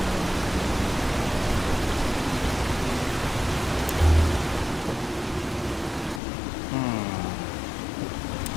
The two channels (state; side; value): drops out; right; at 6.2 s